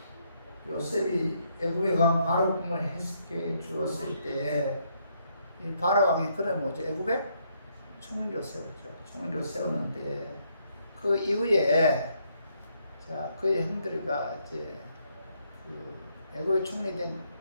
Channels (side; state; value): both; inverted; correlation -0.73